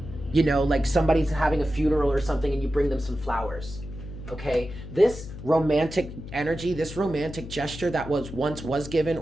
You know, like somebody's having a funeral or something and you bring them some flowers. Okay? This romantic energy, this romantic gesture that once was given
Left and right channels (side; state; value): left; noise; hum, 11 dB below the sound